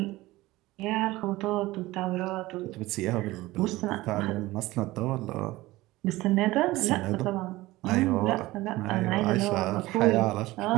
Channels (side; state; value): left; quieter; 18.7 dB